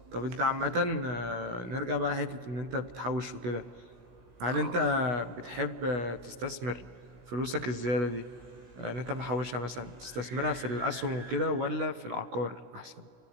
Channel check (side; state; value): left; late; 16 ms